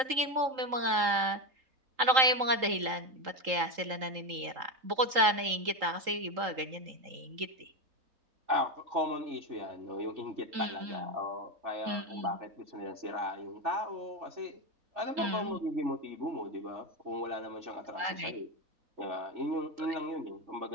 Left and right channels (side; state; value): left; late; 3.8 ms